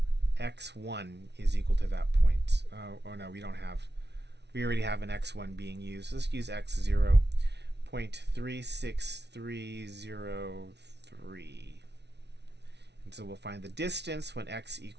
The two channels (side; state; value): left; late; 0.50 ms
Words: x1 is equal to that point. Oh no, we don't have. We already have an x1 being used. Let's use x0, 0.36303. And so we'll find the distance when x